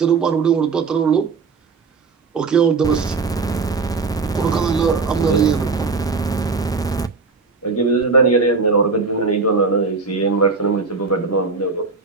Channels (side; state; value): left; quieter; 4.5 dB